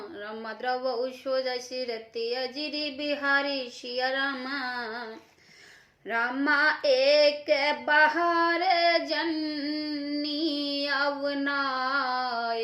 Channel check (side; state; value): both; identical; correlation 1.00